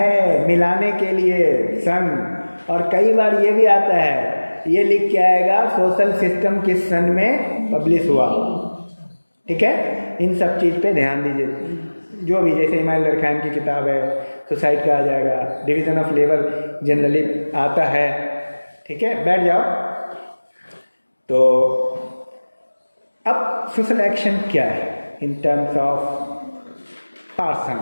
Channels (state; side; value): inverted; both; correlation -1.00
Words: मिलाने के लिए सन, और कई बार ये भी आता है, ये लिख के आएगा सोशल सिस्टम किस सन में पब्लिश हुआ, ठीक है। इन सब चीज़ पे ध्यान दीजिए, जो भी, जैसे इमाइल दरखान की किताब है, सुसाइड का आ जाएगा, डिवीज़न ऑफ लेबर जनरली आता है, ठीक है। बैठ जाओ। तो अब सोशल एक्शन क्या है इन टर्म्स ऑफ